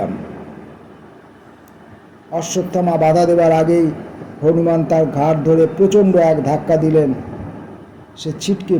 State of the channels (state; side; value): identical; both; correlation 1.00